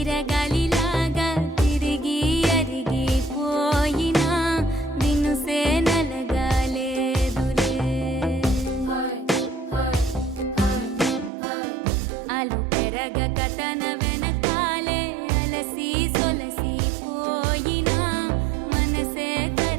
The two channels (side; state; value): left; drops out; at 11.3 s